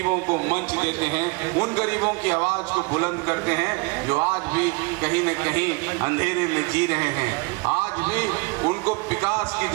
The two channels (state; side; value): quieter; left; 27.9 dB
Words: को मंच देते हैं, उन गरीबों की आवाज को बुलंद करते हैं जो आज भी कहीं न कहीं अंधेरे में जी रहे हैं। आज भी उनको विकास की